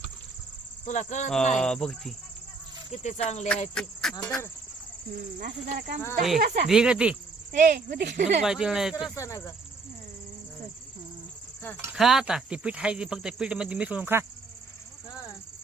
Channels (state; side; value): quieter; left; 4.1 dB